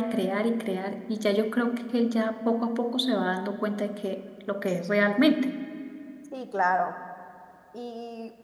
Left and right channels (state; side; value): identical; both; correlation 1.00